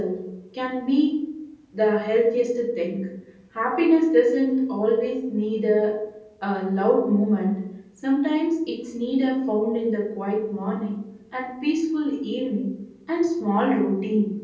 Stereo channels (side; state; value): both; identical; correlation 1.00